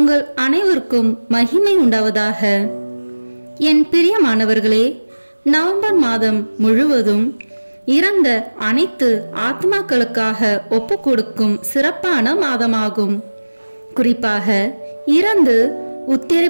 அனைவருக்கும் மகிமை உண்டாவதாக. என் பிரியமானவர்களே, நவம்பர் மாதம் முழுவதும் இறந்த அனைத்து ஆத்மாக்களுக்காக ஒப்பு கொடுக்கும் சிறப்பான மாதமாகும். குறிப்பாக இறந்து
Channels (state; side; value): inverted; both; correlation -1.00